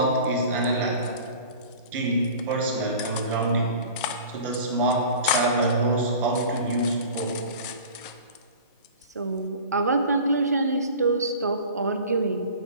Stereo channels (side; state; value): both; inverted; correlation -0.40